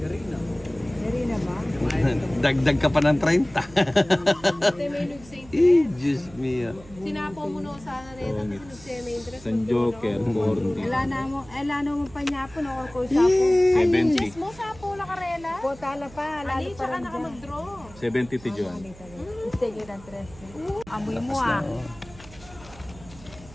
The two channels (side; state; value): right; noise; hum, 20 dB below the sound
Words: Dari na ba? Dagdag ka pa ng 30. Ate may nagsaint. Diyos mio. Sinapaw mo na sa nareta kasi nagsaya may interest. San Joker, 40. Ala na mo pa niya po, ko sa po. 70. Diyos mo, sapaw la karela. Po, tala pa. Lalo Ani, pa tsaka rin naka dyan. mag-draw. 70 ti John. Sige, ng 3. Amoy mo ah.